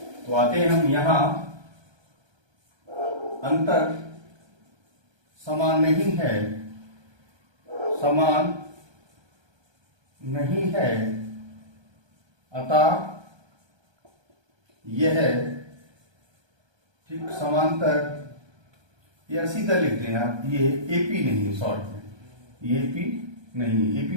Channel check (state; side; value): late; left; 1.3 ms